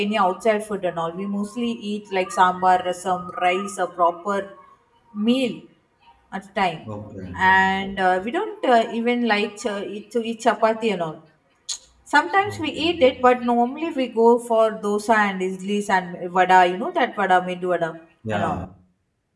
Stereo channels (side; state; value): both; identical; correlation 1.00